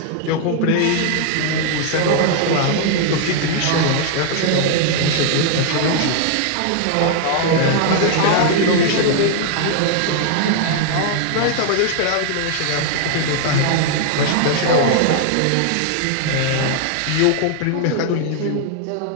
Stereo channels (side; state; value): both; different; correlation 0.00